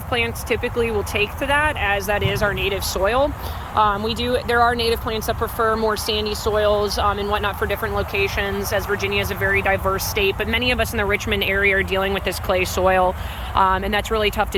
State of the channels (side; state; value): both; identical; correlation 1.00